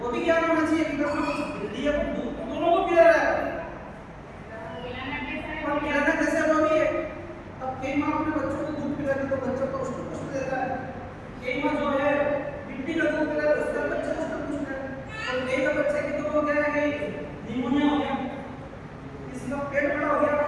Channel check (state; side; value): identical; both; correlation 1.00